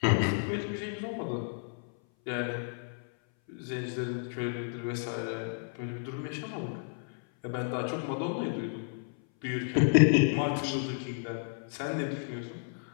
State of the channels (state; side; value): silent; right; 56 dB below the other